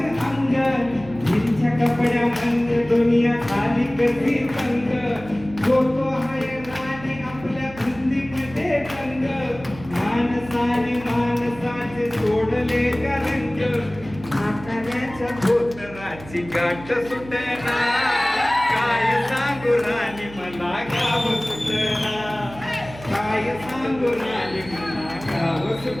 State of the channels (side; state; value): right; noise; hum, 16 dB below the sound